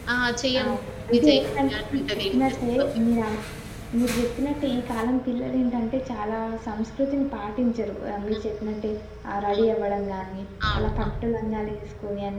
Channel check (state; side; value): identical; both; correlation 1.00